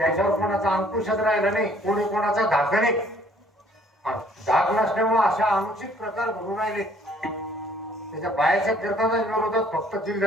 कोणाचा अंकुशच राहिला नाही. कोणी कोणाचा धाक नाही. धाक नसल्यामुळे अशा अनुचित प्रकार घडून राहिले. त्याच्या बायाच्या कीर्तनाच्या विरोधात फक्त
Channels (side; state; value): both; normal; correlation 0.60